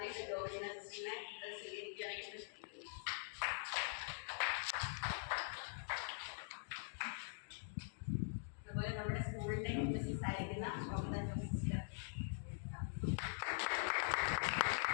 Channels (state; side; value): silent; right; digital silence